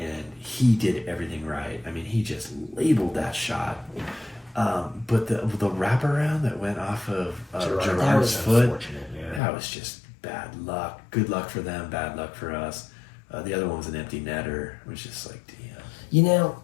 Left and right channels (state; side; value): drops out; right; at 9.4 s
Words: he did everything right. I mean, he just labeled that shot. But the wraparound that went off of Gerard's foot, that was just bad luck. Good luck for them, bad luck for us. The other one was an empty netter. It was just like, damn.